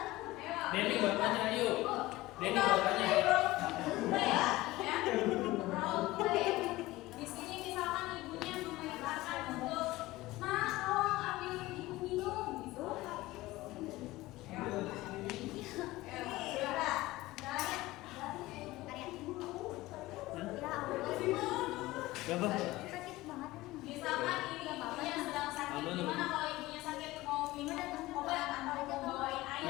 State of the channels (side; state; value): right; quieter; 18.6 dB